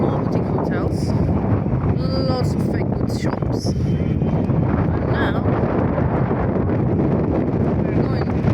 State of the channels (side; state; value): both; identical; correlation 1.00